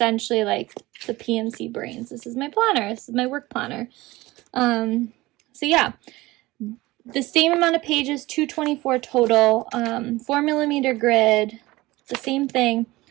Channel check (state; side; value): quieter; left; 19.6 dB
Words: like the PMC brains. This is my planner. This is my work planner. So yeah, the same amount of pages, 224 total, 4mm grid, the same thing.